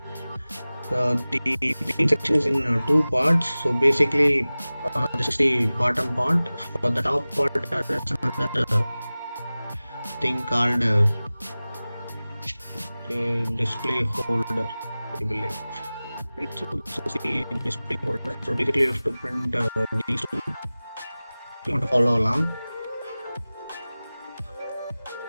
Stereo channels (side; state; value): both; inverted; correlation -0.98